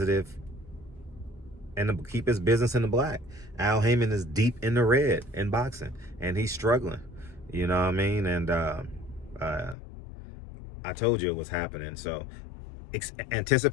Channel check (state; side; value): drops out; right; at 9.8 s